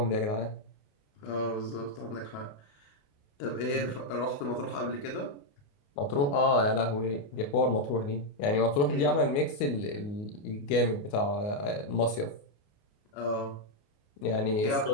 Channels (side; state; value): right; late; 29 ms